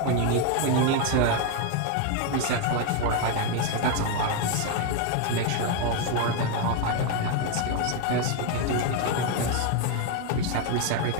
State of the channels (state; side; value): different; both; correlation 0.01